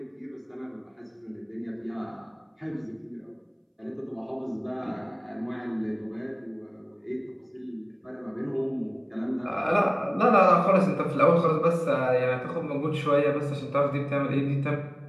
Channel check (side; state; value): both; identical; correlation 1.00